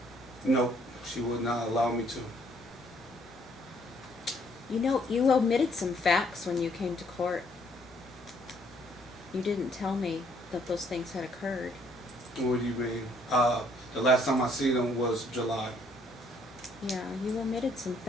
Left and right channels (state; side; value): normal; both; correlation 0.66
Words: No, she would not allow me to. You know, you omitted some facts when you came to court. You didn't tell me that those things had occurred. What do you mean? The last time I see them was July. Yeah, you omitted some